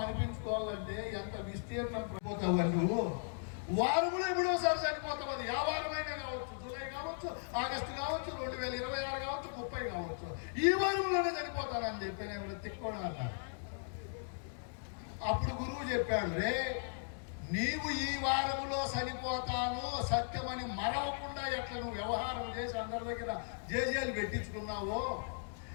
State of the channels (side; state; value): right; silent; digital silence